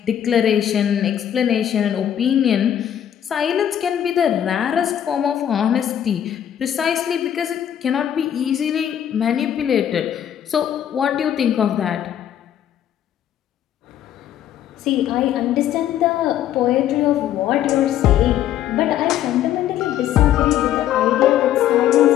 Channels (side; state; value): right; quieter; 10.6 dB